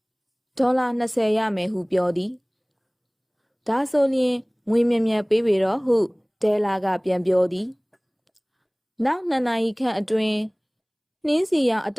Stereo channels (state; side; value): identical; both; correlation 1.00